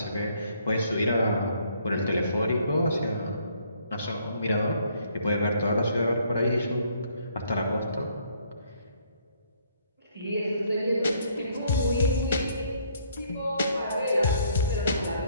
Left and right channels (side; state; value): both; inverted; correlation -0.66